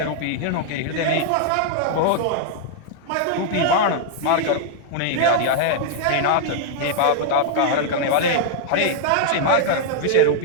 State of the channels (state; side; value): different; both; correlation -0.01